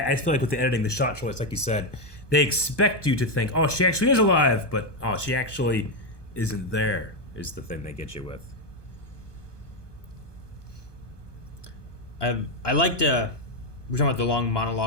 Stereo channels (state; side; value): late; right; 1.2 ms